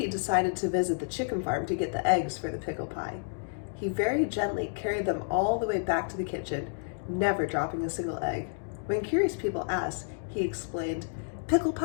decided to visit the chicken farm to get the eggs for the pickle pie. He very gently carried them all the way back to the kitchen, never dropping a single egg. When curious people asked, he explained, "Pickle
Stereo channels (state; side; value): silent; right; digital silence